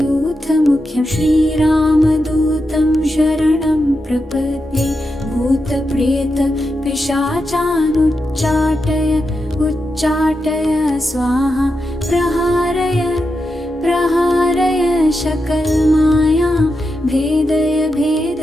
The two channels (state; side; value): normal; both; correlation 0.88